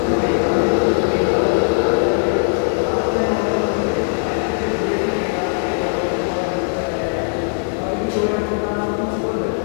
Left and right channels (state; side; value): silent; right; digital silence